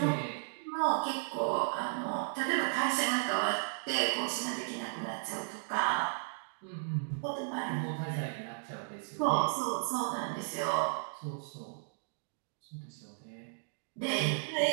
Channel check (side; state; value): left; silent; digital silence